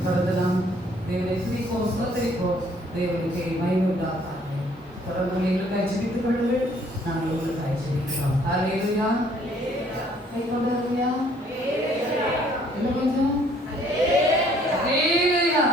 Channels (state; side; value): normal; both; correlation 0.61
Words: தொடர்ந்து நாம் தேவனை துதிப்போம், ஸ்தோத்திரிப்போம். தேவனுக்கு மகிமையுண்டாக தொடர்ந்து எங்களுக்காய் ஜெபித்துக் கொள்ளுங்கள். நாங்கள் உங்களுக்காய் ஜெபிக்கிறோம். அல்லேலூயா. கை கொண்டாருயா. என்ன கொஞ்சம் அல்லேலூயா.